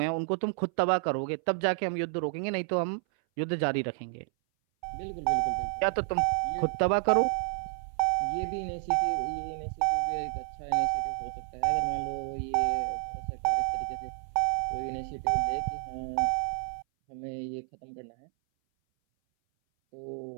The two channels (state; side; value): silent; left; 58 dB below the other